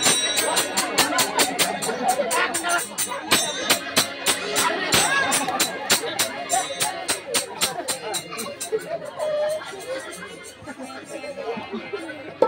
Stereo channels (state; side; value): identical; both; correlation 1.00